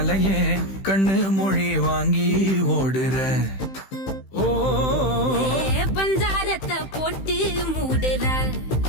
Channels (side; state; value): right; late; 15 ms